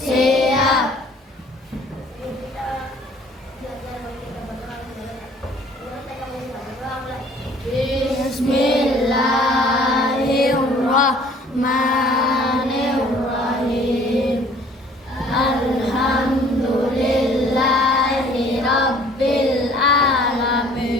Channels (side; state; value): both; normal; correlation 0.55